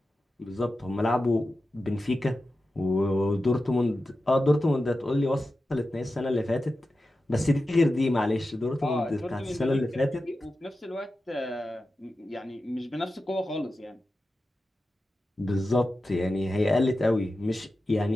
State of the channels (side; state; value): both; normal; correlation 0.92